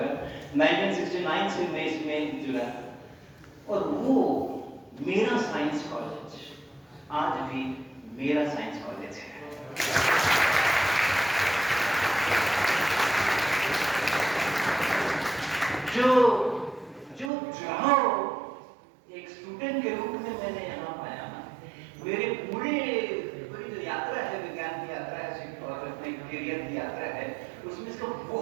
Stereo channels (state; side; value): drops out; left; at 17.3 s